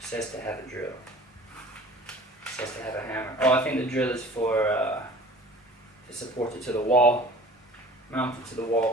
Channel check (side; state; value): both; normal; correlation 0.46